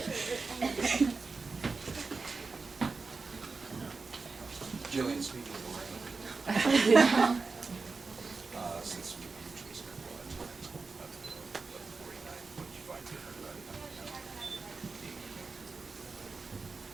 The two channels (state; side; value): quieter; left; 4.3 dB